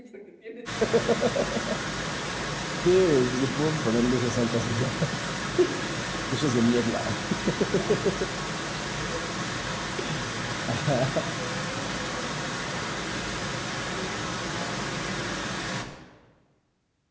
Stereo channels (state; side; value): identical; both; correlation 1.00